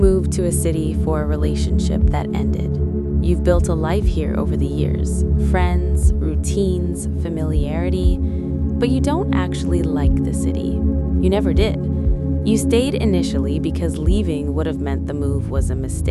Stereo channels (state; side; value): identical; both; correlation 1.00